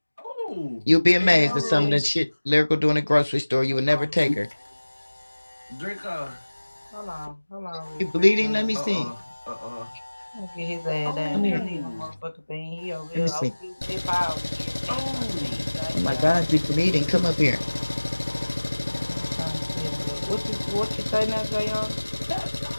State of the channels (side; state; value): both; inverted; correlation -1.00